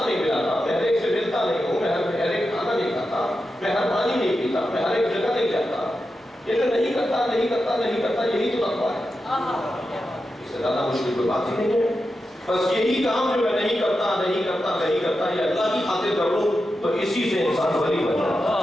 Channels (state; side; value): normal; both; correlation 0.89